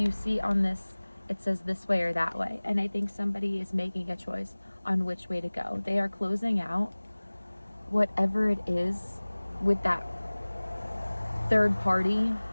see on this, it says this way or that way. And I think somebody is making a choice on which way to go. They are closing out whatever it is with that third party,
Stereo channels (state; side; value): inverted; both; correlation -1.00